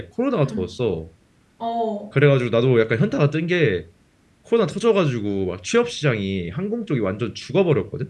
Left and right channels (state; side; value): identical; both; correlation 1.00